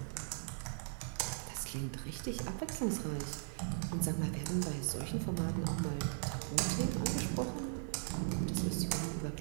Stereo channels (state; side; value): silent; left; digital silence